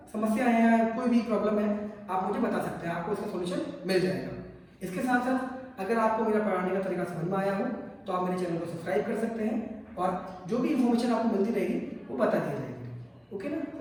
समस्या है या कोई भी प्रॉब्लम है आप मुझे बता सकते हैं, आपको इसका सोल्यूशन मिल जाएगा। इसके साथ साथ अगर आपको मेरा पढ़ाने का तरीका समझ में आया हो तो आप मेरे चैनल को सब्सक्राइब कर सकते हैं और जो भी इन्फॉर्मेशन आपको मिलती रहेगी वो बता दी जाएगी। ओके ना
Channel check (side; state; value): both; identical; correlation 1.00